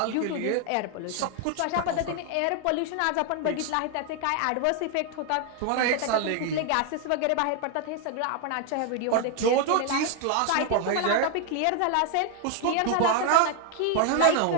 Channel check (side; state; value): both; different; correlation 0.00